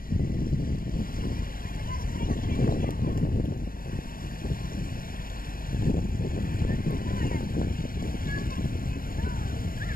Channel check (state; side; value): late; right; 0.42 ms